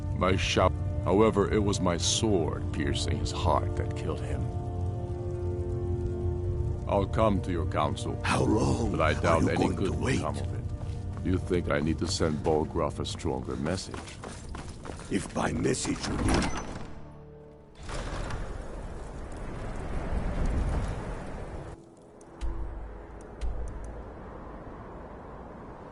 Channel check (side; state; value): both; identical; correlation 1.00